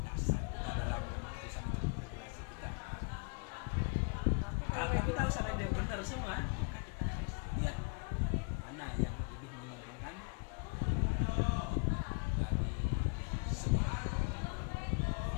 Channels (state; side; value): quieter; right; 37.5 dB